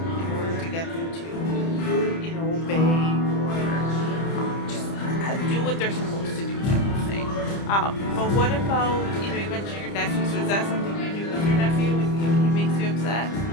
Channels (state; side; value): late; right; 30 ms